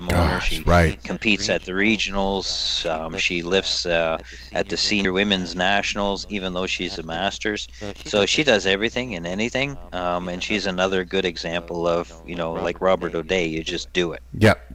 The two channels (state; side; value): identical; both; correlation 1.00